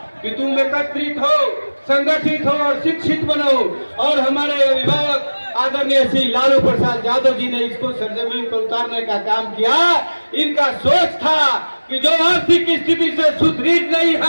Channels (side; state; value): both; inverted; correlation -1.00